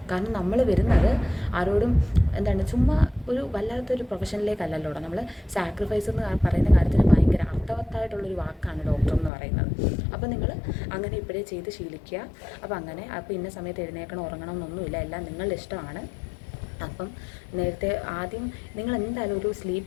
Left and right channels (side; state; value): right; drops out; at 9.3 s